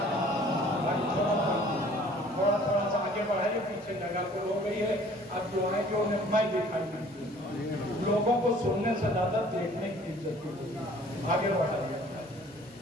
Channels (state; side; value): normal; both; correlation 0.53